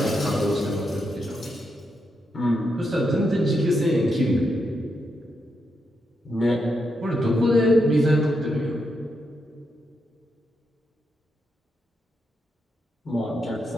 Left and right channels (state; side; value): normal; both; correlation 0.83